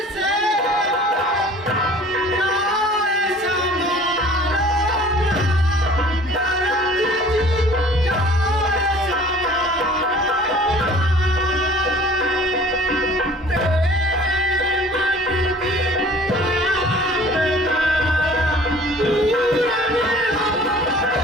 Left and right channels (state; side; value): normal; both; correlation 0.49